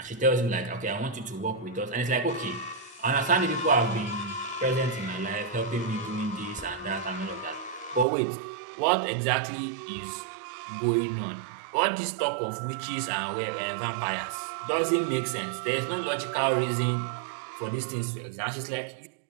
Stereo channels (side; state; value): left; drops out; at 8.1 s